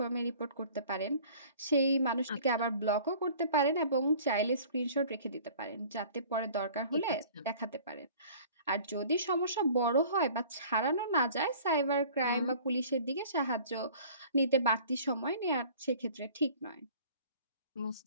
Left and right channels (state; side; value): inverted; both; correlation -0.48